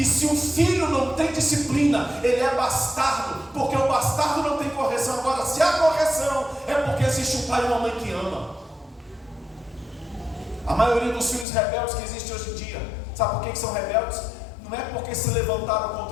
se um filho não tem disciplina, ele é bastardo, porque o bastardo não tem correção. Agora, se há correção, é porque existe um pai e uma mãe que ama. A maioria dos filhos rebeldes que existem hoje em dia, sabe por que são rebeldes? Não é porque se levantaram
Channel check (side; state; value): right; drops out; at 11.5 s